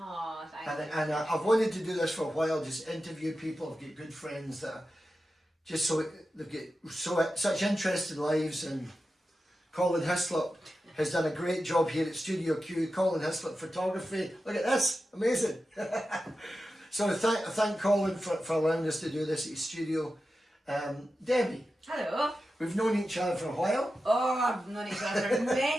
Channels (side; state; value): both; normal; correlation 0.92